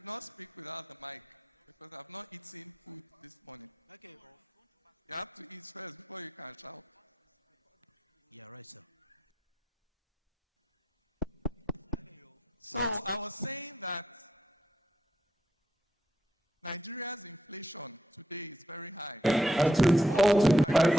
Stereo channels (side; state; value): both; normal; correlation 0.79